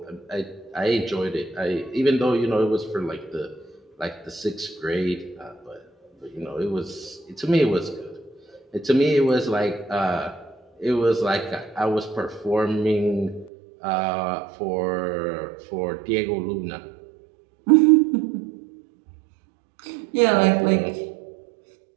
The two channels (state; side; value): drops out; left; at 13.5 s